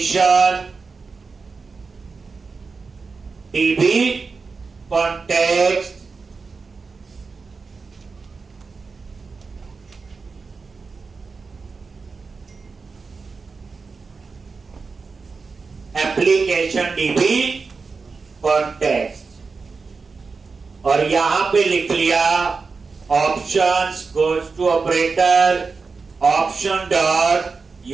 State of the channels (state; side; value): quieter; left; 4.6 dB